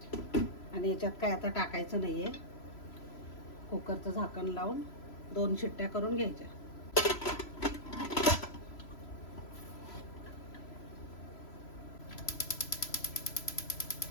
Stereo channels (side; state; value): right; late; 3.0 ms